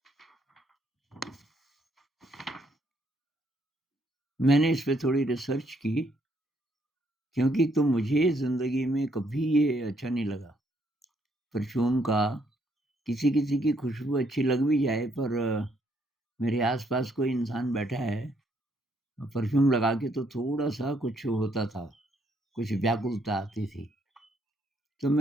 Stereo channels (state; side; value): normal; both; correlation 0.71